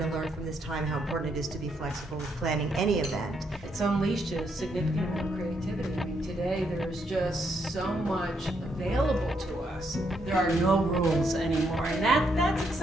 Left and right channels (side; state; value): both; normal; correlation 0.76